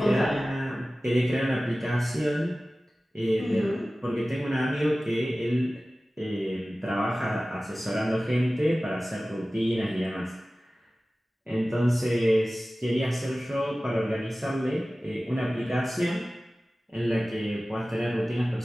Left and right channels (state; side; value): normal; both; correlation 0.97